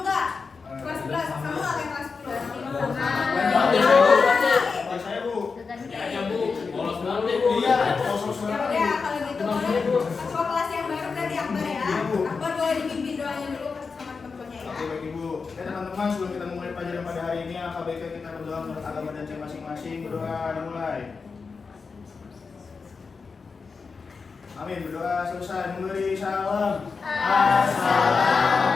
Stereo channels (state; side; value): quieter; right; 4.9 dB